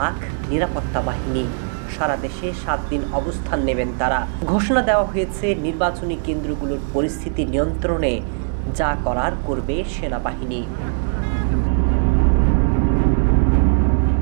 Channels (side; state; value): left; silent; 64 dB below the other